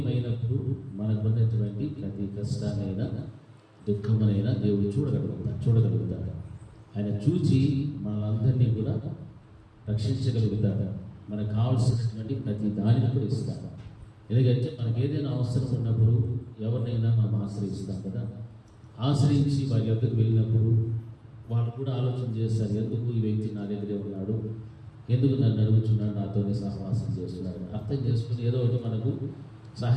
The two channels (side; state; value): both; identical; correlation 1.00